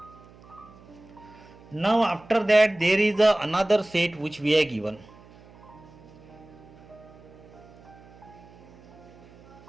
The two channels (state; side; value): noise; right; hum, 23 dB below the sound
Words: Now after that there is another set which we are given.